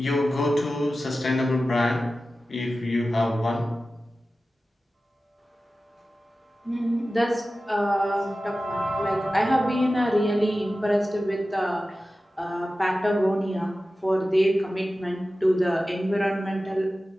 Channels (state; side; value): normal; both; correlation 0.95